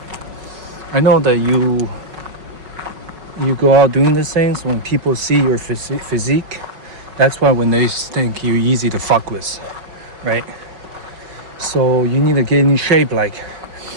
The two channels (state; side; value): late; left; 5.3 ms